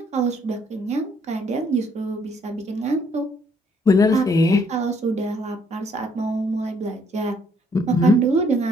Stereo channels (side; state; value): both; normal; correlation 0.66